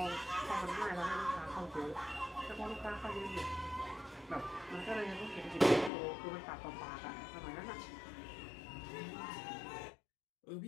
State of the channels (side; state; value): right; drops out; at 5.9 s